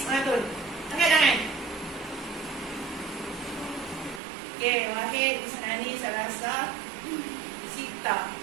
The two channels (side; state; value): left; drops out; at 4.2 s